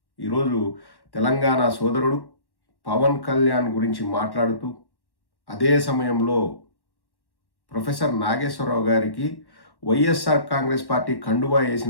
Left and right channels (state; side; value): late; right; 1.1 ms